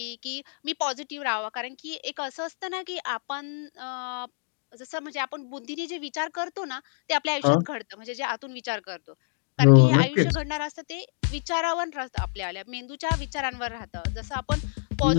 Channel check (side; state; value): right; silent; digital silence